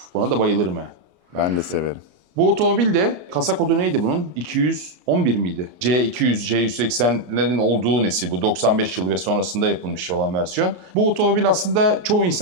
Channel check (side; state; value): left; late; 34 ms